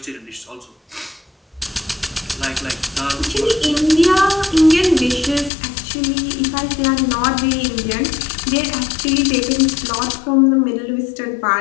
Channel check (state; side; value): drops out; right; at 5.5 s